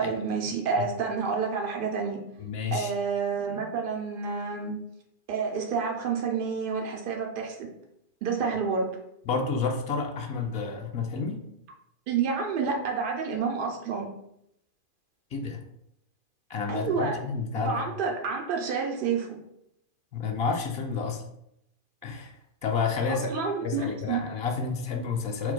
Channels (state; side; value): late; left; 2.5 ms